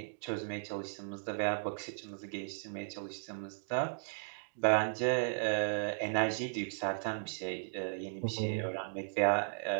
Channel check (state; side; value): silent; left; digital silence